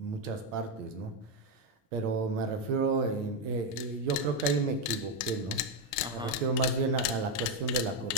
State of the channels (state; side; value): normal; both; correlation 0.05